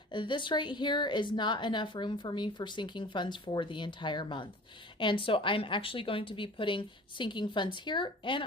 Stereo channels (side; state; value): both; normal; correlation 0.43